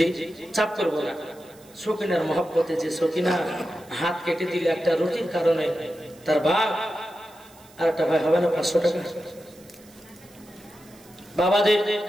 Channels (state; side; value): noise; right; hiss, 25 dB below the sound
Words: চাপ করবো না। সকিনার মহব্বতে যে সকিনা হাত কেটে দিলে একটা রুটির কারণে তার বাপ, আর একটা ভাই হবে না 500 টাকা? বাবাদের